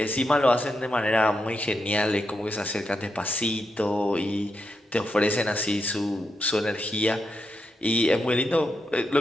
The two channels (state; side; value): normal; both; correlation 0.84